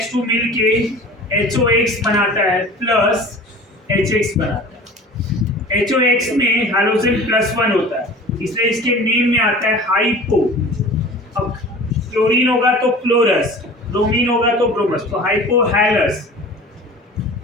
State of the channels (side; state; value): both; normal; correlation 0.41